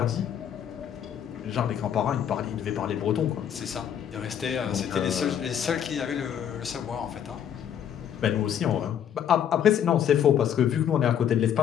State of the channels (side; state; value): right; quieter; 9.2 dB